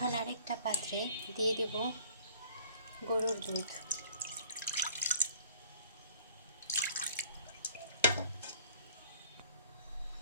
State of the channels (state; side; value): inverted; both; correlation -0.53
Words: আরেকটা পাত্রে দিয়ে দেব গরুর দুধ।